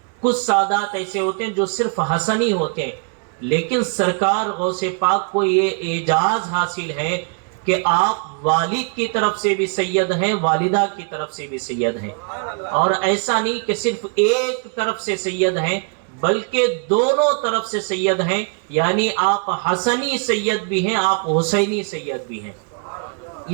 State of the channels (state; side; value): quieter; left; 39.4 dB